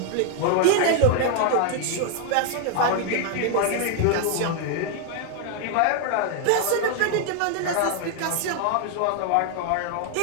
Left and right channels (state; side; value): different; both; correlation 0.00